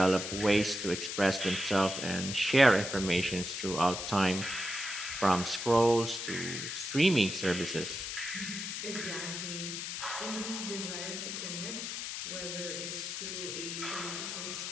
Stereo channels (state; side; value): noise; left; hiss, 5 dB below the sound